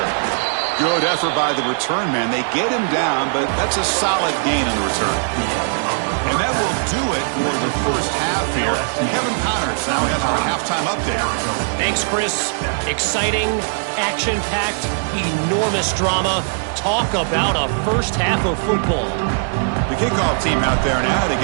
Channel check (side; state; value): left; silent; 62 dB below the other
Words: Good effort by the return man. They get him down, but that's a solid gain in the return. And that will do it for the first half here. Kevin Connors now has our halftime update. Thanks, Chris. Exciting, action-packed, enormous drama. Talk about a first half of football. The kickoff team out there now to